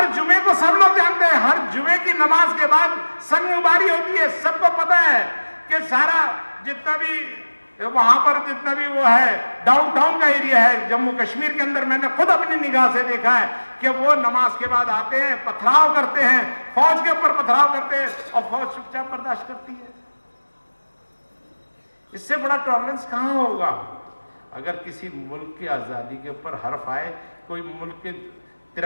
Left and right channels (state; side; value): inverted; both; correlation -1.00